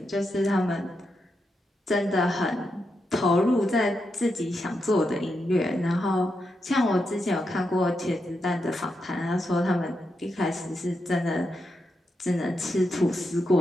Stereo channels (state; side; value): normal; both; correlation 0.85